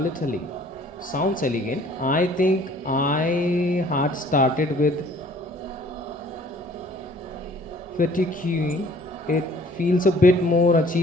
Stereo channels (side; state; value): both; normal; correlation 0.55